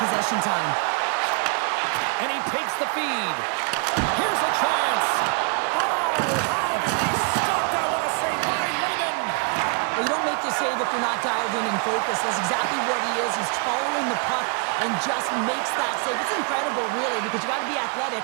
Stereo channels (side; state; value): left; quieter; 36.4 dB